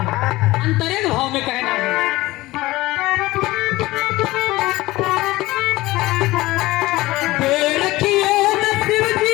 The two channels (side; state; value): right; quieter; 18.8 dB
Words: अंतरे के भाव में कहना है।